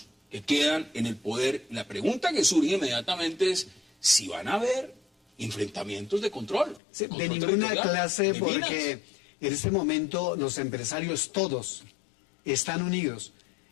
que quedan en el poder. La pregunta que surge inmediatamente es si van a haber enfrentamientos de control. Sí, de ninguna clase, porque en este momento los empresarios todos están unidos.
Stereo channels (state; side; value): drops out; right; at 6.8 s